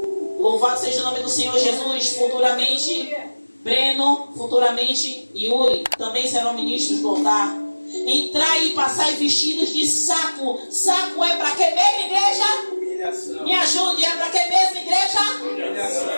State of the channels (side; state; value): both; inverted; correlation -1.00